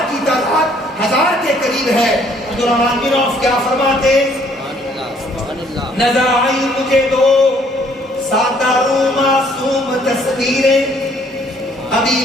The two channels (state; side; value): normal; both; correlation 0.63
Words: کی تعداد 1000 کے قریب ہے۔ عبد الرحمن بن عوف کیا فرماتے؟ نظر آئی مجھے 2 سادہ رو معصوم تصویریں، ابی